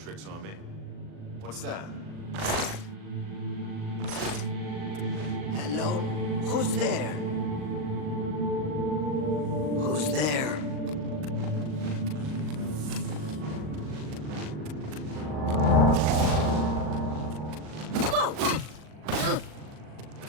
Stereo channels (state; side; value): late; left; 39 ms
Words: on me. What's that? Hello? Who's there? Who's there?